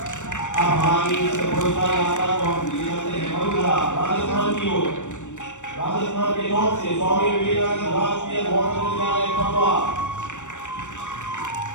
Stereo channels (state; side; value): late; right; 0.85 ms